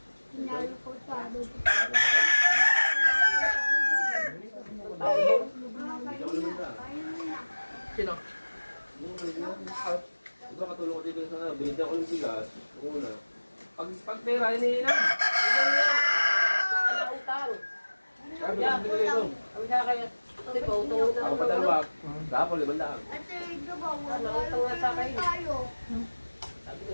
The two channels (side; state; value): both; inverted; correlation -1.00